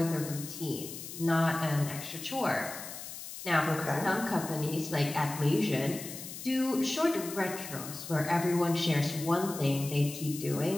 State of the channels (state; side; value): noise; left; hiss, 10 dB below the sound